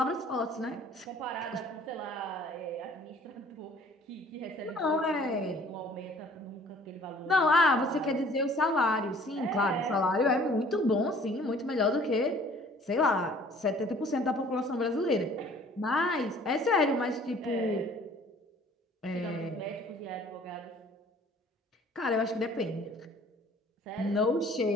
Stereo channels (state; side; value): normal; both; correlation 0.54